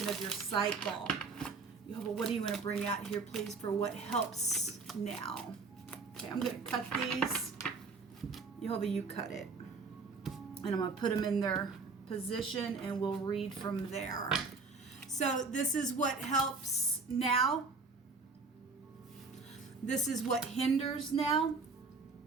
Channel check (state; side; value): quieter; left; 4.2 dB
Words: of your cycle. Jehovah, what do you want to bring out here, please, for what helps now? Okay, I'm going to cut these. Jehovah, you cut it. And I'm going to put them in their position, and we'll read from there. So this is what helps now. This is what hinders now.